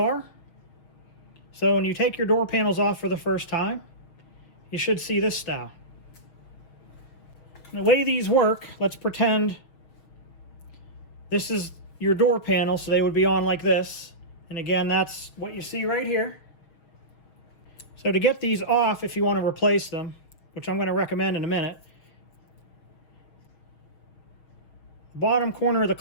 So when you take your door panels off for the first time, you should see this style. And the way these work, let's pretend this is your door panel, so they would be on like this. And again, that's what you see right here. So to get these off, if you want to replace them, which I'm going to recommend in a minute, the bottom corner of the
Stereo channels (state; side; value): late; right; 6.4 ms